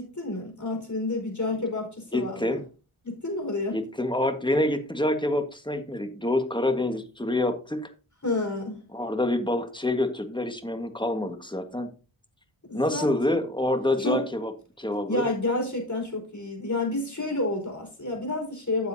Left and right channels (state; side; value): normal; both; correlation 0.42